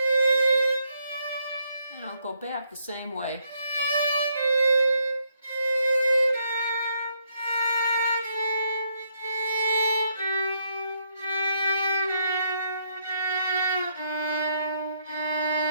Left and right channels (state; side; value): inverted; both; correlation -0.75